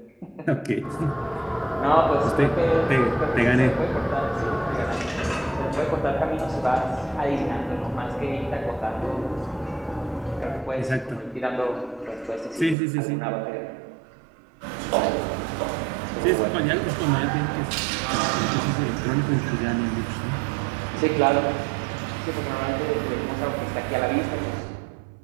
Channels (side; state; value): left; drops out; at 12.8 s